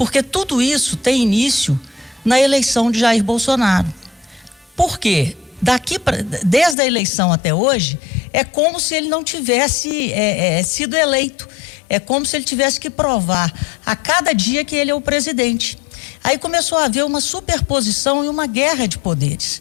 tudo isso tem início na eleição de Jair Bolsonaro. Por quê? Desde a eleição até hoje, é como se ele não tivesse sido eleito. É como se ele tivesse que provar a cada dia que ele é o presidente. Aí começou a haver uma superposição e uma guerra de poderes.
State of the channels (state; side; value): drops out; right; at 6.8 s